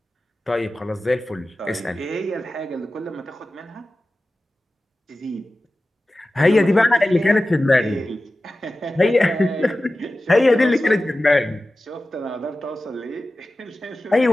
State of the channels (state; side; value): normal; both; correlation 0.95